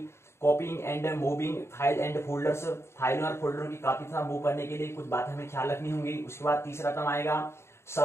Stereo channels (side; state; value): right; late; 0.13 ms